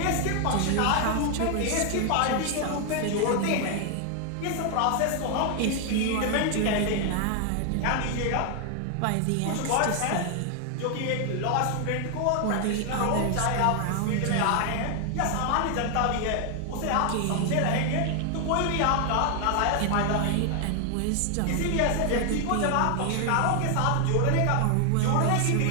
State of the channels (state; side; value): different; both; correlation 0.00